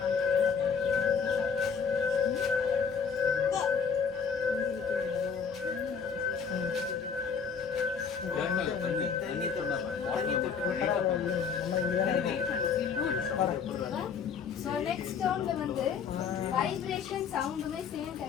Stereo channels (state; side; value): quieter; right; 6.2 dB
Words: ஸோ நெக்ஸ்ட் ஸ்டோனில் வந்து வைப்ரேஷன் சவுண்டுமே சேம்